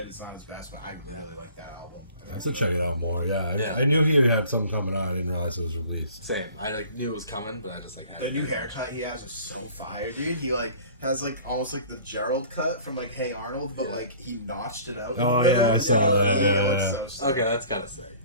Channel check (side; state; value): both; inverted; correlation -0.47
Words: It's not his best, but I really like that album. I have to check it out more. Yeah, Yeah. I knew he had something coming out. I didn't realize it was released. Same. I like knew it was coming, but I just like The new haircut he has is so fire, dude. He like has like almost like the Gerald cut from like Hey Arnold, but like he notched it out. Oh, yeah, I saw that, It yeah, looks yeah. so sick. Okay, that's kind of sick.